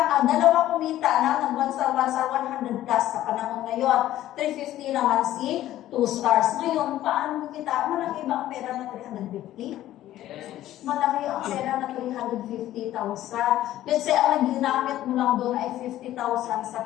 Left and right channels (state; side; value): quieter; right; 13.7 dB